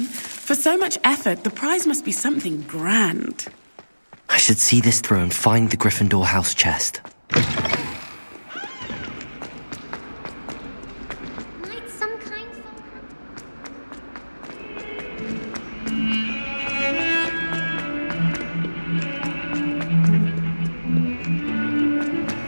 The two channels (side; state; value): both; inverted; correlation -1.00